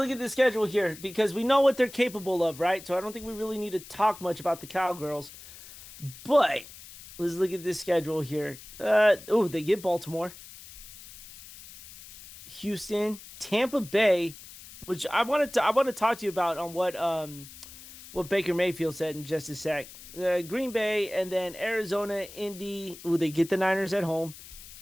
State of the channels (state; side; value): noise; left; hiss, 17 dB below the sound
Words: at the schedule here because we know what they're capable of, right? So I don't think we really need to talk much about the Cowgirls. But let's look at this schedule here. They get Baltimore, Houston, Tampa Bay, which I want to talk to you about on what Baker Mayfield said in just a sec. Green Bay, and then Arizona, Indy. They get the Niners at home.